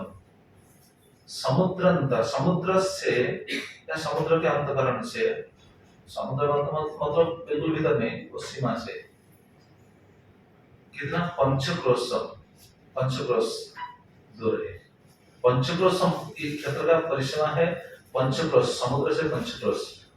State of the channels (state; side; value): identical; both; correlation 1.00